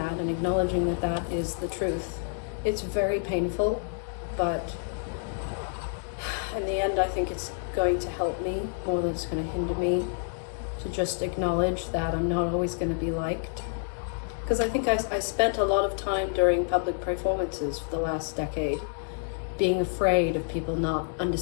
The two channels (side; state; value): right; silent; digital silence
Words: and acknowledging that that is the truth, it's very painful, but in the end I think it's going to help me more than it's going to hinder me, to just acknowledge that I'm not always going to be liked. Because I think I spent a lot of time during public performances for the last decade being afraid of people not